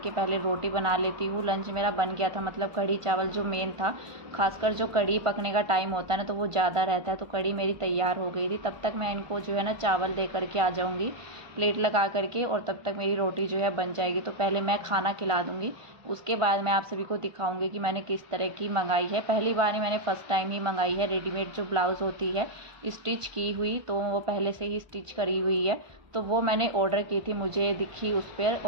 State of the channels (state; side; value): late; left; 1.2 ms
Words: पहले रोटी बना लेती हूँ। लंच मेरा बन गया था, मतलब कढ़ी चावल जो मेन था, खासकर जो कढ़ी पकने का टाइम होता है ना तो वो ज़्यादा रहता है, तो कढ़ी मेरी तैयार हो गई थी। तब तक मैं इनको जो है ना चावल दे करके आ जाऊँगी प्लेट लगा करके, और तब तक मेरी रोटी जो है बन जाएगी। तो पहले मैं खाना खिला दूँगी, उसके बाद मैं आप सभी को दिखाऊंगी कि मैंने किस तरह की मंगाई है। पहली बार ही मैंने फ़र्स्ट टाइम ही मंगाई है रेडीमेड जो ब्लाउज़ होती है स्टिच की हुई, तो वो पहले से ही स्टिच करी हुई है। तो वो मैंने ऑर्डर की थी, मुझे दिखी उस पर,